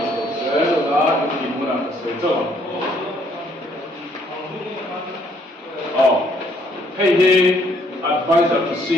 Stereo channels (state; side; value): normal; both; correlation 0.66